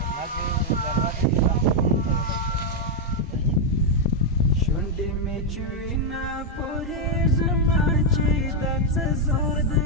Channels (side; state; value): both; normal; correlation 0.00